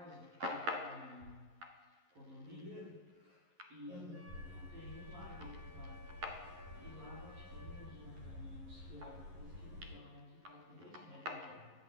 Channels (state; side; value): late; left; 11 ms